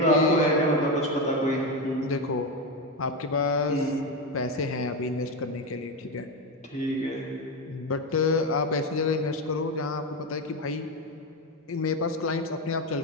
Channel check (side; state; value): both; normal; correlation 0.14